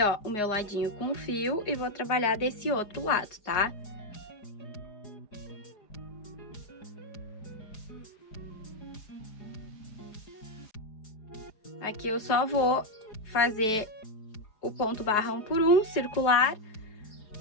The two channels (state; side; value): late; right; 4.6 ms